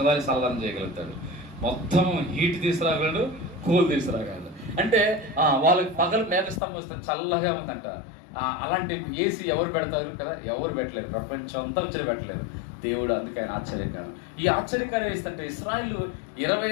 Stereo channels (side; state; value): right; drops out; at 6.6 s